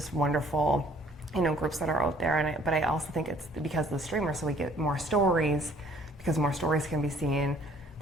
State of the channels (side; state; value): both; normal; correlation 0.58